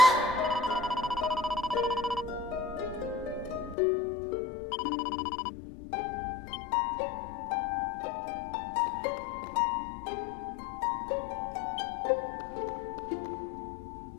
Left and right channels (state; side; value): drops out; right; at 3.8 s